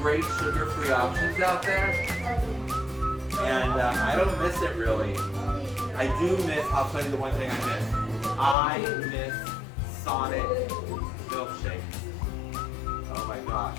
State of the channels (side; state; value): right; drops out; at 8.6 s